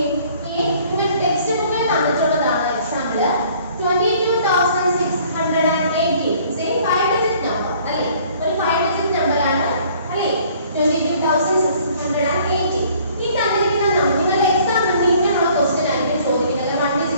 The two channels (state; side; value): inverted; both; correlation -0.57